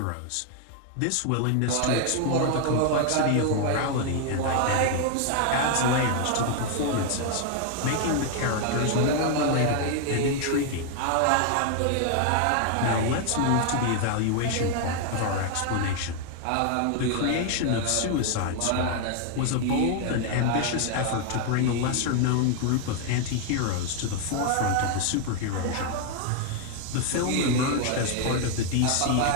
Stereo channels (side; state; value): both; different; correlation 0.00